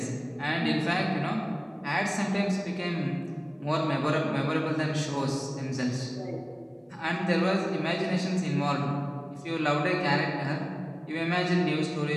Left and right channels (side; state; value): both; identical; correlation 1.00